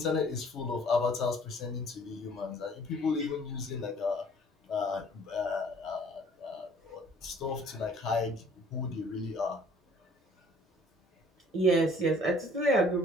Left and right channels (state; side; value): normal; both; correlation 0.55